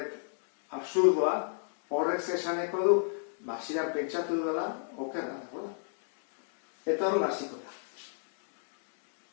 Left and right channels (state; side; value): silent; right; digital silence